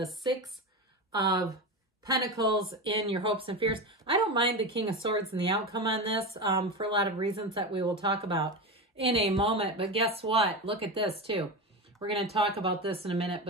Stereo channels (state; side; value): normal; both; correlation 0.21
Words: Six of Pentacles in your hopes and fears. I don't mind the King of Swords and the outcome on this for a lot of reasons that we will talk about in a moment. But guess what? Look at this, too. We're going to talk about this in a minute,